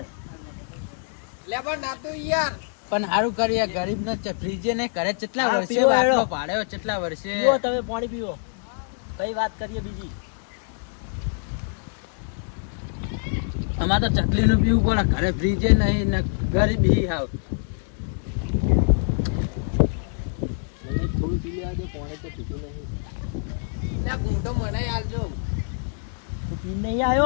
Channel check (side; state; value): right; silent; digital silence